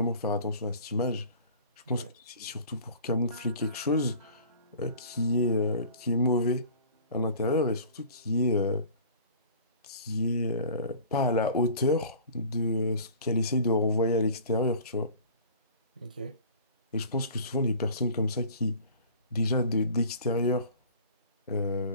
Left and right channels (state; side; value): inverted; both; correlation -0.45